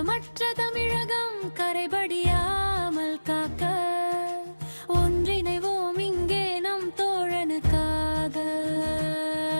தமிழகம் கரைபடியாமல் காக்க ஒன்றிணைவோம் இங்கே நம் தோழனுக்காக.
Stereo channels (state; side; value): inverted; both; correlation -1.00